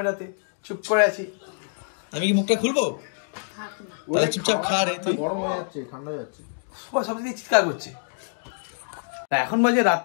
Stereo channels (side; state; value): right; silent; digital silence